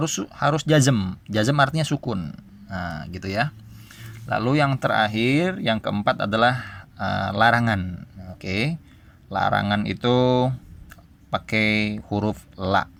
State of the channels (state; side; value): identical; both; correlation 1.00